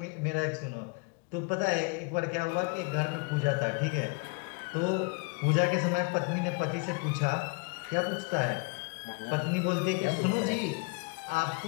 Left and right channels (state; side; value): quieter; right; 31.3 dB